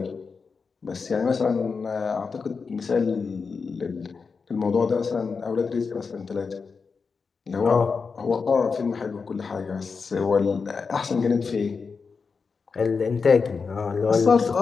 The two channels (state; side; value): quieter; right; 5.1 dB